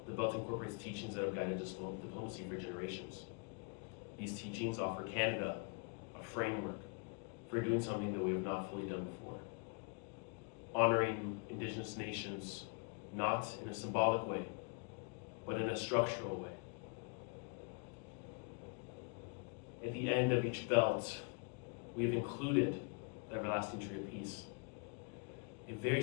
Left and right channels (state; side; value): quieter; right; 35.8 dB